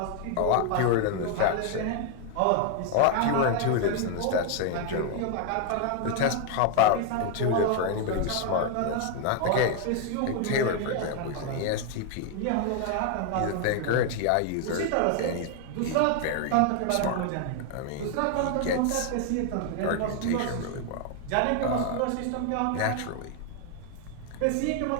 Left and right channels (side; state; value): both; different; correlation 0.00